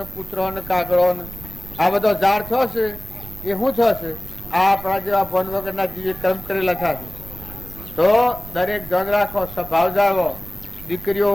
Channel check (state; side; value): noise; right; rumble, 15 dB below the sound